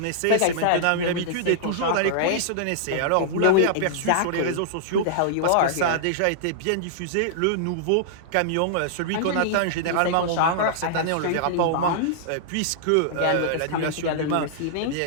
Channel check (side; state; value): both; different; correlation -0.02